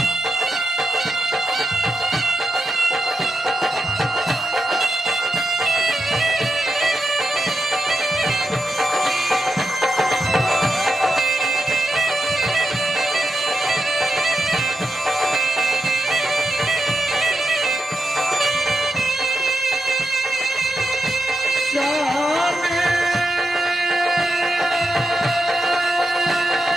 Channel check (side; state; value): both; normal; correlation 0.86